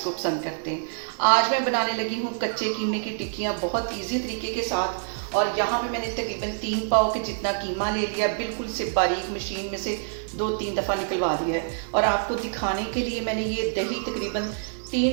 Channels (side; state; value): left; silent; digital silence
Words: को पसंद करते हैं। आज मैं बनाने लगी हूँ कच्चे कीमे की टिक्कियाँ बहुत इजी तरीके के साथ। और यहाँ पे मैंने तकरीबन 3 पाव के जितना कीमा ले लिया, बिल्कुल से बारीक मशीन में से 2-3 दफ़ा निकलवा दिया है। और आपको दिखाने के लिए मैंने ये दही तकरीबन